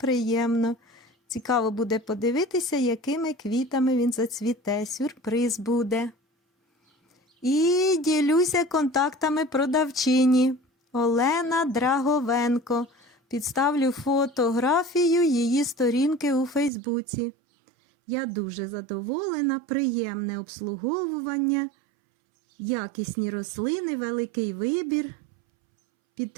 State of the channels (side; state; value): left; drops out; at 16.7 s